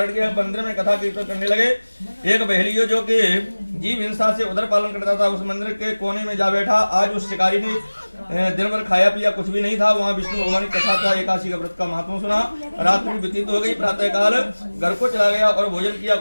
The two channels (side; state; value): both; inverted; correlation -1.00